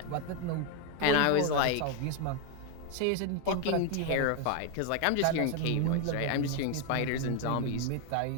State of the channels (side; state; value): both; different; correlation 0.01